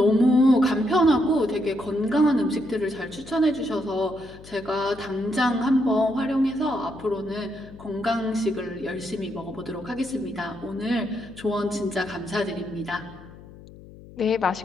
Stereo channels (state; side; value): noise; left; hum, 19 dB below the sound